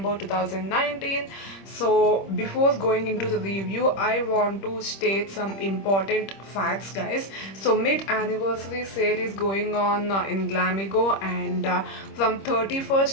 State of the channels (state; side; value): late; right; 26 ms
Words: 2019. So before going into the review, I want to state some important facts guys. So mid-anniversary sale is going on in Glamego, and from